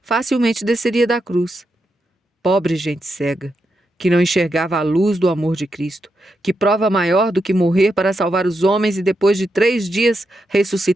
facilmente desceria da cruz. Pobre gente cega, que não enxergava a luz do amor de Cristo, que prova maior do que morrer para salvar os homens e depois de 3 dias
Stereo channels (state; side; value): normal; both; correlation 0.84